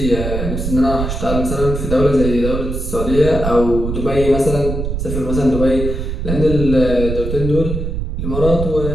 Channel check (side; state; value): right; noise; rumble, 4 dB below the sound